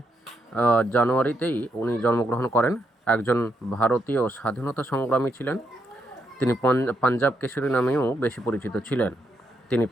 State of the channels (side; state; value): both; normal; correlation 0.79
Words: জানুয়ারিতেই উনি জন্মগ্রহণ করেন। একজন ভারতীয় স্বাধীনতা সংগ্রামী ছিলেন। তিনি পাঞ্জাব কেশরী নামেও বেশি পরিচিত ছিলেন। তিনি